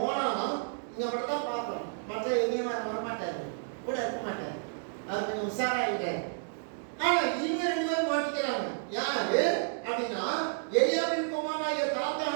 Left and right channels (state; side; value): silent; left; digital silence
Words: ஓனானும் இங்க மட்டும் தான் பார்க்கிறோம். மற்ற எங்கேயும் வரமாட்டாரு, கூட இருக்க மாட்டாரு. அது கொஞ்சம் உஷாராயிட்டாரு. ஆனா இவங்க 2 பேரும் மாட்டிக்கிறாங்க. யாரு அப்படின்னா எலியாபின் குமாரனாகிய